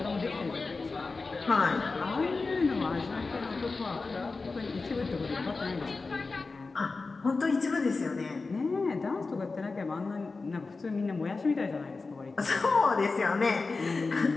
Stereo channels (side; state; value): right; quieter; 3.9 dB